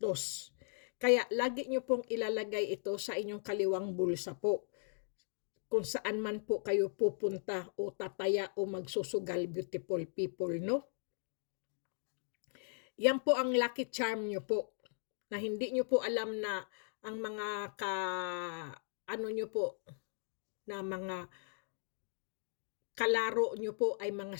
Kaya lagi nyo pong ilalagay ito sa inyong kaliwang bulsa po. Kung saan man po kayo pupunta o tataya o magsusugal, beautiful people, no? Yan po ang lucky charm nyo po. Na hindi nyo po alam na ang mga nyo po, na mga kalaro nyo po ay mga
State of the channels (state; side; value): silent; right; digital silence